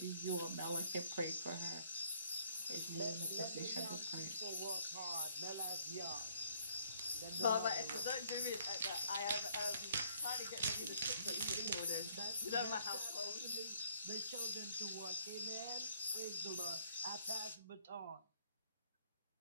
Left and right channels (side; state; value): both; inverted; correlation -0.63